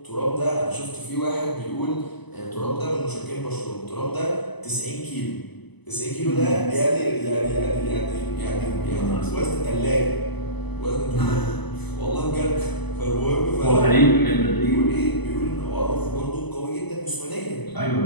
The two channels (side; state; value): right; late; 0.99 ms